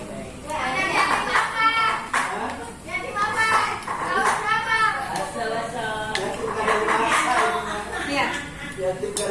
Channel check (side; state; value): both; identical; correlation 1.00